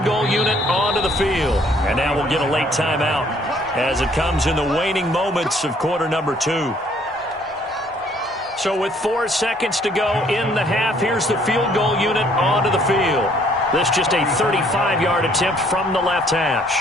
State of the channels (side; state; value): both; normal; correlation 0.62